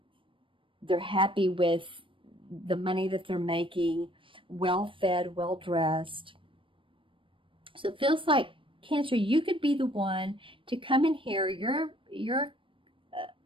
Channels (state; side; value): late; left; 0.25 ms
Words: happy with the money that they're making, well-fed, well-dressed. So it feels like, Cancer, you could be the one to come in here. You're